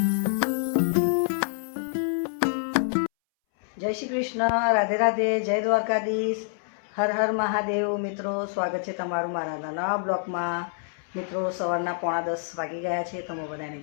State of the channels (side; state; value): right; silent; 60 dB below the other